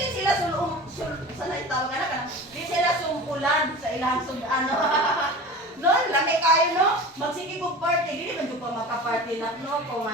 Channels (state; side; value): normal; both; correlation 0.35